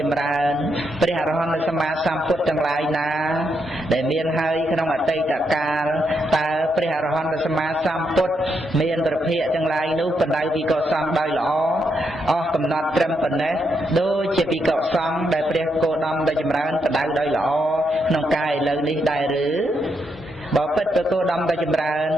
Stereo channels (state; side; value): normal; both; correlation 0.80